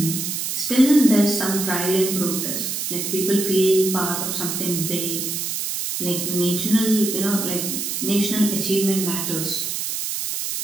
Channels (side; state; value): right; noise; hiss, 3 dB below the sound